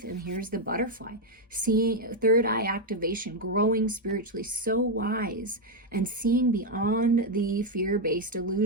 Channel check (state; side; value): normal; both; correlation 0.03